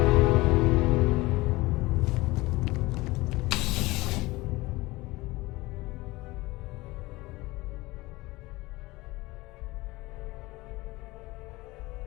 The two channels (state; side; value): quieter; right; 20.9 dB